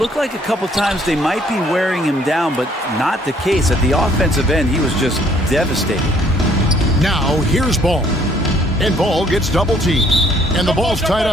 like a couple times they might be wearing him down, but not the case. At the offensive end, he was just devastating. Now here's Ball. And Ball gets double teamed. And the ball's tied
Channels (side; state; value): both; normal; correlation 0.62